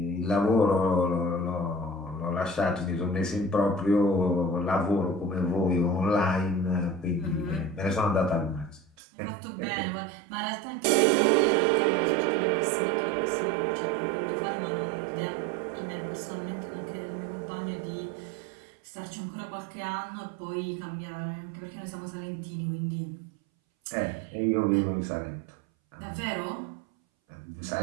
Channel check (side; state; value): left; drops out; at 8.9 s